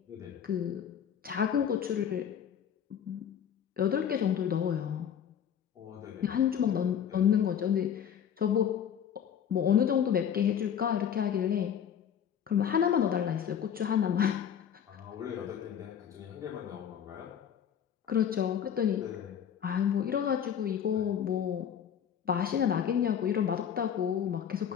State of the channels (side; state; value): right; quieter; 8.7 dB